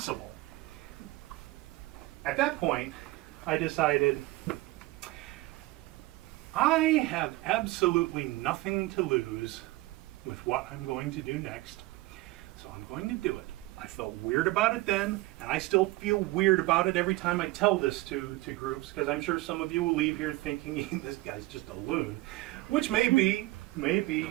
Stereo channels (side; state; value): left; quieter; 19.6 dB